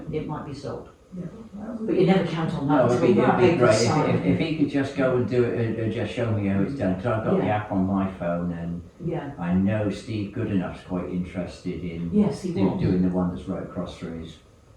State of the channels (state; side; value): identical; both; correlation 1.00